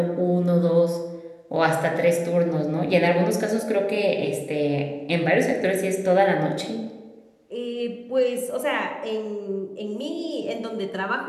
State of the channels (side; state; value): both; identical; correlation 1.00